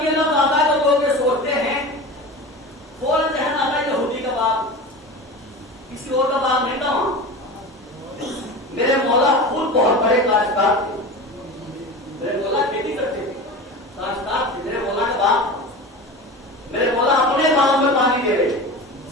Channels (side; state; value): both; normal; correlation 0.31